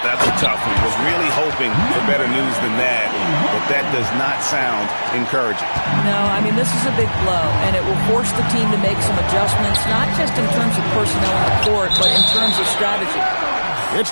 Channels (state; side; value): inverted; both; correlation -1.00